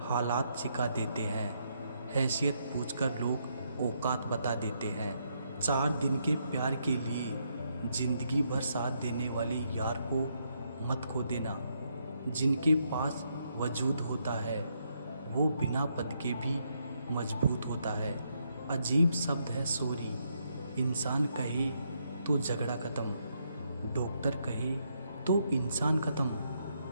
हालात सिखा देते हैं। हैसियत पूछकर लोग औकात बता देते हैं। 4 दिन के प्यार के लिए ज़िंदगी भर साथ देने वाले यार को मत खो देना। जिनके पास वजूद होता है वो बिना पद के भी मजबूत होता है। अजीब शब्द है सॉरी। इंसान कहे तो झगड़ा ख़त्म, डॉक्टर कहे तो इंसान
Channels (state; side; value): inverted; both; correlation -0.77